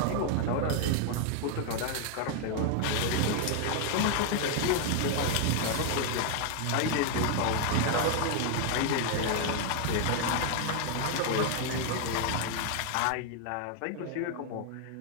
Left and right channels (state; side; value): different; both; correlation 0.00